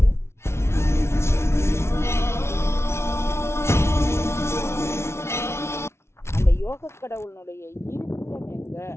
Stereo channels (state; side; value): late; right; 0.13 ms